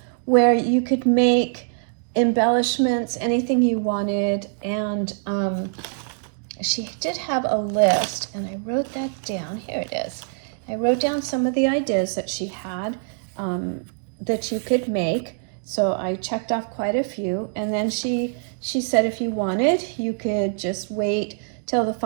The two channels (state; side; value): silent; left; digital silence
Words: where you could make embellishments, anything you wanted, and she did have a list, and I wrote that down. Here it is. I wrote down some of the ideas that she had that you could make. So I checked off quite a few, and then she said if you wanted, you could just wait till the